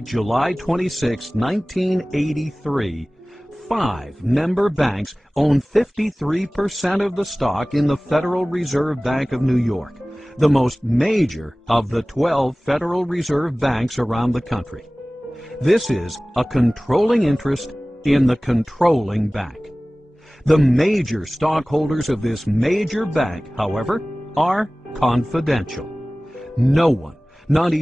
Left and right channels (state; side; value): normal; both; correlation 0.98